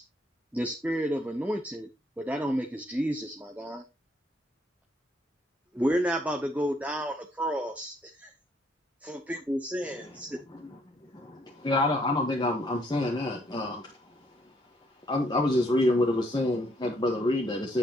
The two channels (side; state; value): both; normal; correlation 0.70